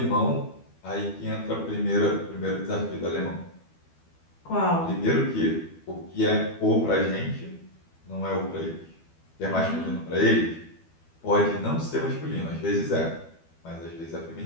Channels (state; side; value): late; right; 12 ms